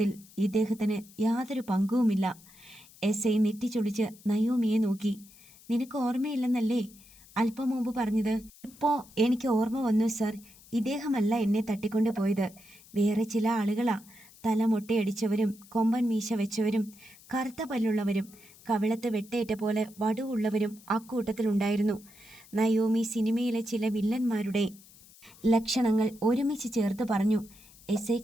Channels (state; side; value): noise; left; hiss, 23 dB below the sound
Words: ഇദ്ദേഹത്തിന് യാതൊരു പങ്കുമില്ല. എസ് ഐ നെറ്റിച്ചൊളിച്ച് നയോമിയെ നോക്കി. നിനക്ക് ഓർമ്മയില്ലെന്നല്ലേ അല്പം മുമ്പ് പറഞ്ഞത്? ഇപ്പോൾ എനിക്ക് ഓർമ്മ വന്നു സർ. ഇദ്ദേഹമല്ല എന്നെ തട്ടിക്കൊണ്ടുപോയത്, വേറെ ചില ആളുകളാ. തല മൊട്ടയടിച്ചവരും കൊമ്പൻ മീശ വെച്ചവരും കറുത്ത പല്ലുള്ളവരും കവിളത്ത് വെട്ടേറ്റ പോലെ വടുവുള്ളവരും അക്കൂട്ടത്തിലുണ്ടായിരുന്നു. നയോമി സിനിമയിലെ ചില വില്ലന്മാരുടെ ലക്ഷണങ്ങൾ ഒരുമിച്ച് ചേർത്ത് പറഞ്ഞു. എസ് ഐ